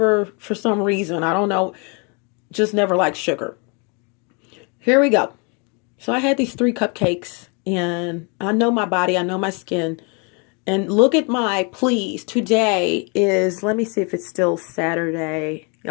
for some reason, I don't know, just never liked sugar. Here we go. So I had these 3 cupcakes, and I know my body, I know my skin. And look at please, today is, let me see if it's still Saturday.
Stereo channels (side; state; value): right; quieter; 33.5 dB